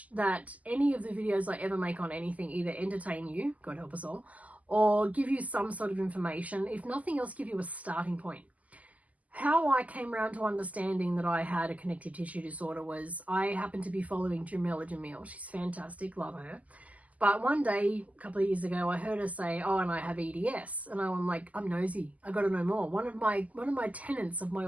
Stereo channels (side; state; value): left; late; 0.074 ms